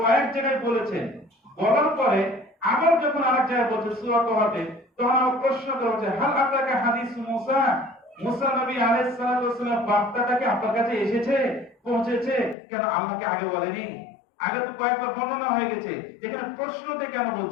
জায়গায় বলেছেন। বলার পরে আবার যখন আরেক জায়গায় বলছে সূরা তাওবাতে, তখন আবার প্রশ্ন করা হচ্ছে, হাল আতাকা হাদিসু মুসা, মুসা নবী আলাইহিস সালাতু ওয়াস সালাম বার্তাটা কি আপনার কাছে এসেছে, পৌঁছেছে? কেন আল্লাহকে আগে বলেনি? আগে তো কয়েকবার বর্ণনা হয়ে গেছে, এখানে প্রশ্নতে কেন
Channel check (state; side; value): drops out; right; at 12.6 s